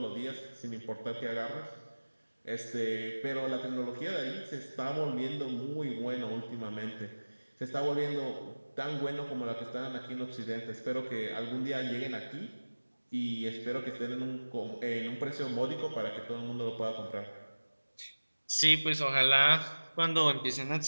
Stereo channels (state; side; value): inverted; both; correlation -1.00